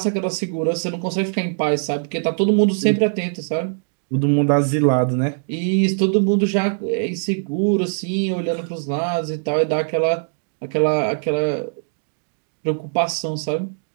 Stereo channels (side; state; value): left; silent; digital silence